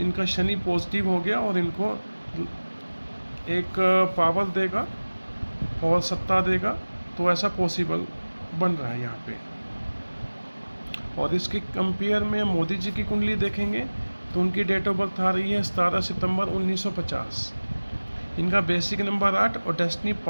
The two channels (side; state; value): both; inverted; correlation -1.00